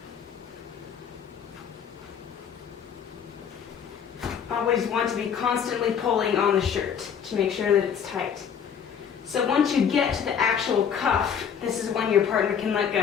Always want to be constantly pulling on the shirt to make sure that it's tight. So once you get to the actual cuff, this is when your partner can let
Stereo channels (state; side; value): quieter; right; 7.7 dB